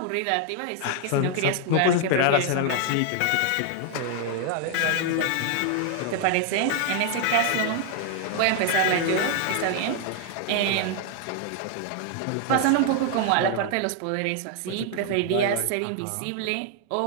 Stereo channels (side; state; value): both; different; correlation 0.00